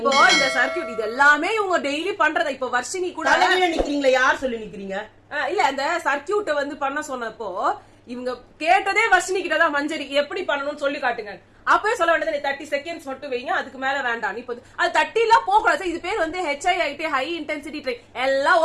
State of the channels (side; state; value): both; identical; correlation 1.00